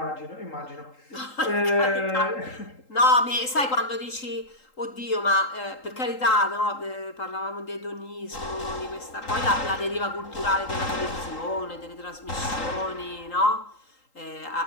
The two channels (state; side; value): late; right; 3.8 ms